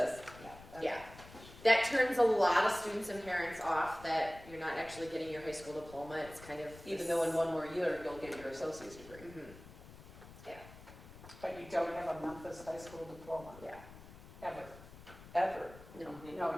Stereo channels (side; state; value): left; noise; rumble, 18 dB below the sound